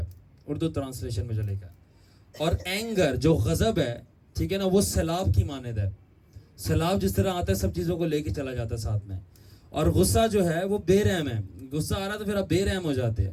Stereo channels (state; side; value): identical; both; correlation 1.00